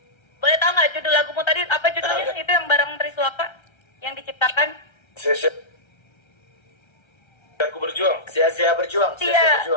boleh tahu nggak judul lagumu tadi apa judulnya? Itu yang bareng Triswaka yang diciptakan. Aku berjuang. Sia-sia berjuang.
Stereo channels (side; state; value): right; late; 1.3 ms